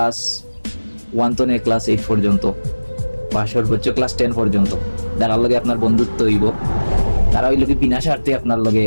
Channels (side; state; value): both; inverted; correlation -1.00